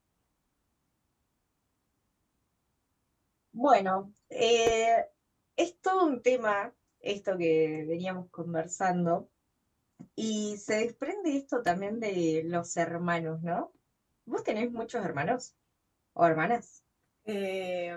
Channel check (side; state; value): both; identical; correlation 1.00